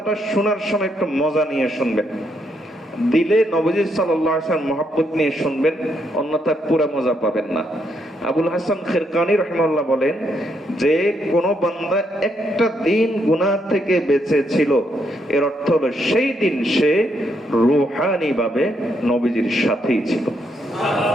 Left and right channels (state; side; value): normal; both; correlation 0.76